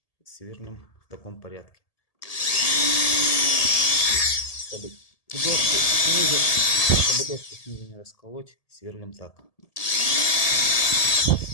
Сверлим в таком порядке. Чтобы доску снизу не расколоть, сверлим так.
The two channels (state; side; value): late; right; 1.8 ms